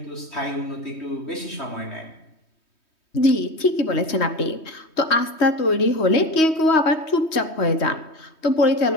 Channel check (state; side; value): late; right; 3.2 ms